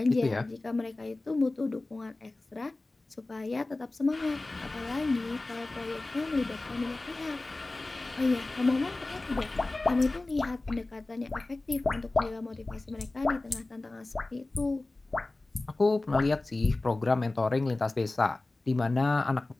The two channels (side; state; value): right; quieter; 3.0 dB